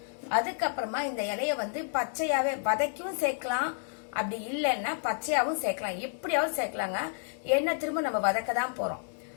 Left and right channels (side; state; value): right; silent; digital silence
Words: அதுக்கப்புறமா இந்த இலைய வந்து பச்சையாவே வதக்கியும் சேர்க்கலாம், அப்படி இல்லைன்னா பச்சையாவும் சேர்க்கலாம். எப்படியாவது சேர்க்கலாங்க. ஏன்னா திரும்ப நம்ம வதக்க தான் போறோம்.